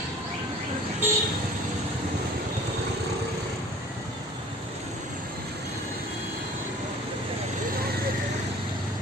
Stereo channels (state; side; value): normal; both; correlation 0.48